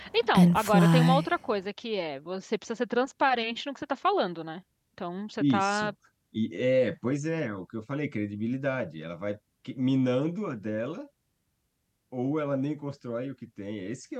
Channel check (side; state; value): both; identical; correlation 1.00